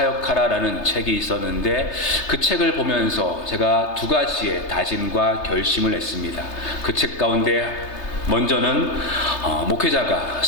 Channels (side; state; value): right; late; 3.3 ms